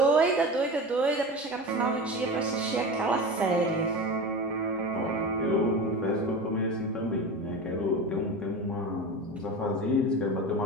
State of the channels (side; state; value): both; normal; correlation 0.28